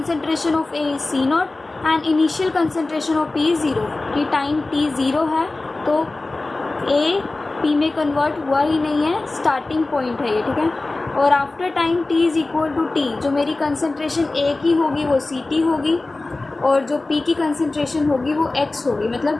of A is C0 and initial concentration of P is 0. कि time t 0 है तो A P में convert हुआ ही नहीं है, starting point है ये, ठीक है. और after time t is equal to t, जो मेरी कंसनट्रेशन A की होगी वो Ct होगी और जो P की कंसनट्रेशन होगी वो X होगी. मतलब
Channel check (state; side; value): quieter; right; 3.2 dB